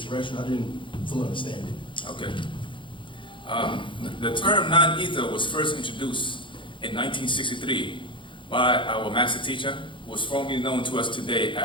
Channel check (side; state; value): right; late; 0.24 ms